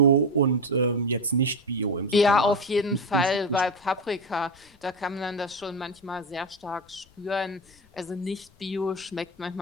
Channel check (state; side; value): noise; left; rumble, 30 dB below the sound